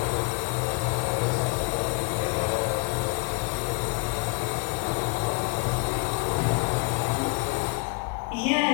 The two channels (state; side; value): quieter; right; 27.3 dB